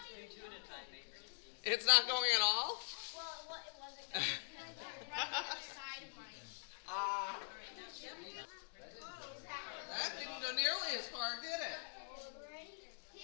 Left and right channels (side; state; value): right; silent; digital silence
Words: It's not going at all? Well, it wasn't going right on the side of mine. That didn't go nearly as far, did it?